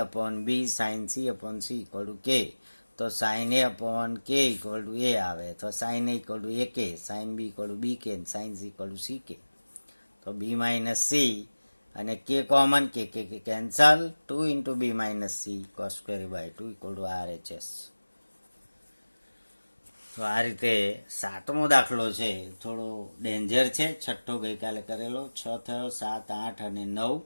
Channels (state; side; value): inverted; both; correlation -1.00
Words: upon B sine C upon C equal to K. તો sine A upon K equal to A આવે, તો sine A equal to A K, sine B equal to B K, sine C equal to C K. તો B minus C અને K common, કે cancel, 2 into B minus C cos square a/2 equal to RHS. તો આ રીતે 7મો દાખલો છે, થોડો danger છે. 6ઠ્ઠો ગઈકાલે કરેલો, 6 થયો, 7, 8 અને 9.